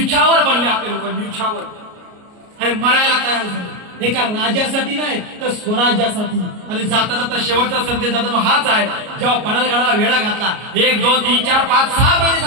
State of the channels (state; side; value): late; left; 33 ms